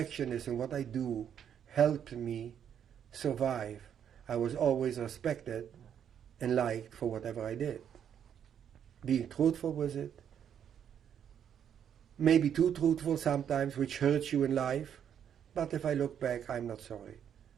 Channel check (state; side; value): quieter; left; 8.8 dB